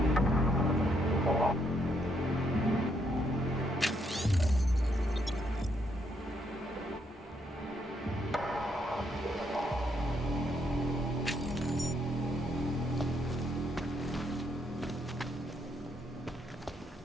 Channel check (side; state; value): both; normal; correlation 0.74